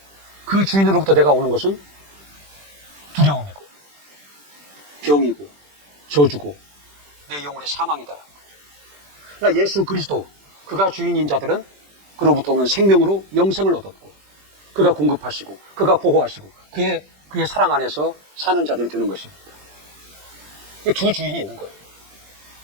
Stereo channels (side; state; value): left; late; 20 ms